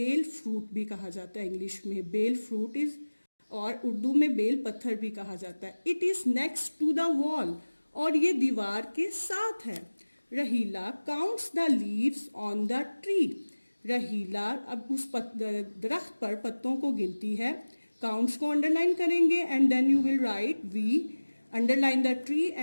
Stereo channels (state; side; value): inverted; both; correlation -1.00